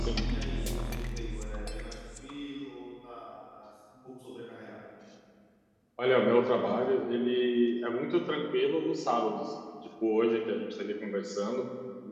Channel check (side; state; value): both; identical; correlation 1.00